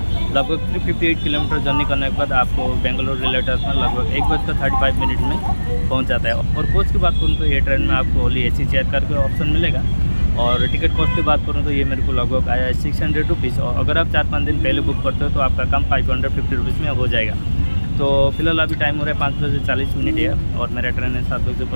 लगभग 358 किलोमीटर जर्नी करने के बाद आपको बेंगलोर रेलवे स्टेशन लगभग 1:35 में पहुंच जाता है। और कोच की बात करूँ तो ये ट्रेन में आपको ओनली एसी चेयर करके ऑप्शन मिलेगा। और टिकट कॉस्ट की बात करूँ तो ये मेरे को लगभग आया है 600 रुपीज़। और अगर आप 4-5 दिन पहले बुक करते हो तो आपका काम 550 रुपीज़ में हो जाएगा। तो फिलहाल अभी टाइम हो रहा है 5:40 है और मेरा ट्रेन है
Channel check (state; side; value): inverted; both; correlation -1.00